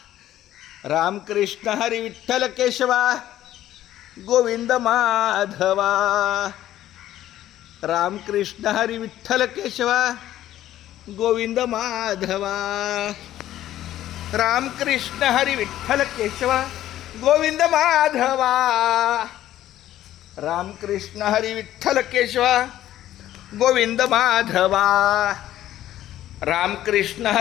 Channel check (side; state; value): right; quieter; 13.1 dB